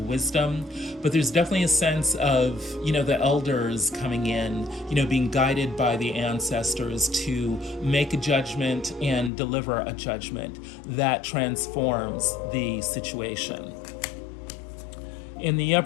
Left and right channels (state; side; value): drops out; right; at 9.3 s